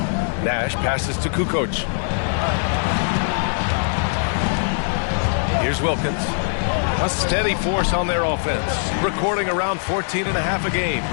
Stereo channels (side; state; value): right; silent; digital silence